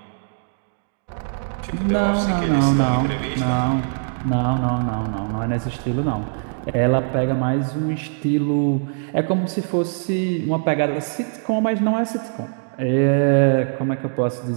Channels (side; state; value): left; silent; digital silence